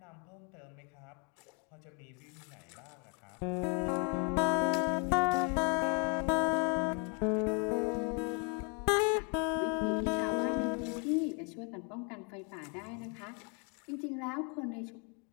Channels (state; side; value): quieter; right; 36.2 dB